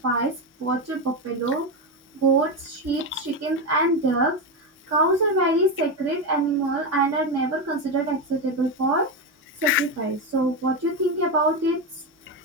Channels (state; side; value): normal; both; correlation 0.13